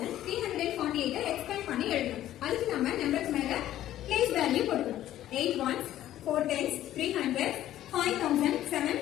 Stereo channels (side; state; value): right; quieter; 13.0 dB